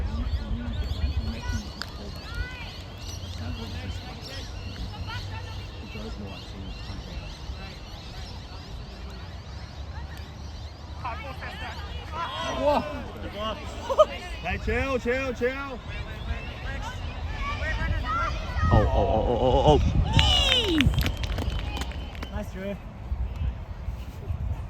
Hey, chill. Oh. Nice, Drew.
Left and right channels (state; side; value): identical; both; correlation 1.00